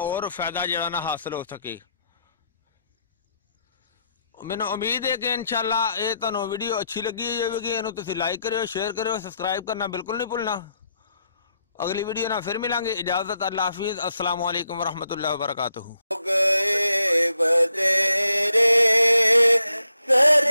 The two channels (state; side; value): inverted; both; correlation -0.79